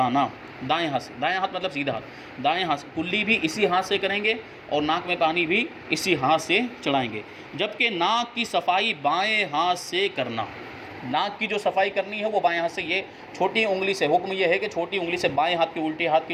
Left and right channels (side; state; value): both; identical; correlation 1.00